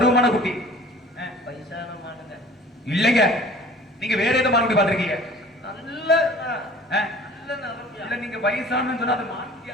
குட்டி. வயசான மானுங்க இல்லைங்க, நீங்க வேற ஏதோ மான் குட்டி பாத்திருக்கீங்க? நல்ல நல்ல நிறமியா. இல்ல நீங்க வயசானு சொன்னா அது மான் குட்டியா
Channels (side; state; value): both; normal; correlation 0.47